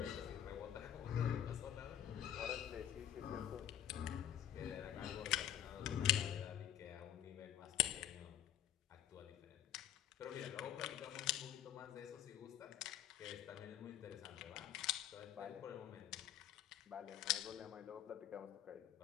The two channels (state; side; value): quieter; right; 11.1 dB